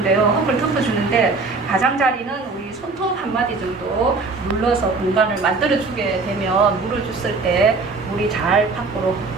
흙을 덮어주는데, 가장자리는 우리 손톱 한 마디 정도 눌러서 공간을 만들어주게 되면, 물을 줬을 때 물이 잘 밖으로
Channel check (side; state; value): left; quieter; 3.9 dB